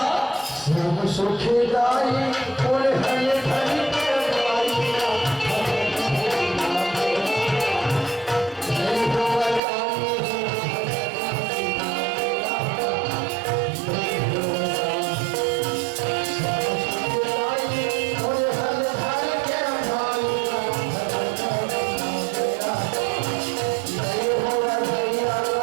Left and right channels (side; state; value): left; drops out; at 9.6 s